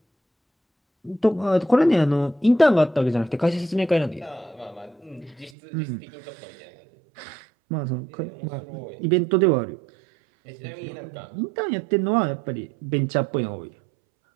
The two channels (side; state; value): left; drops out; at 5.5 s